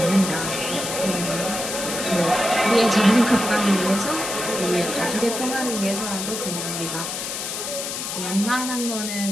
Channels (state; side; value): noise; left; hiss, 5 dB below the sound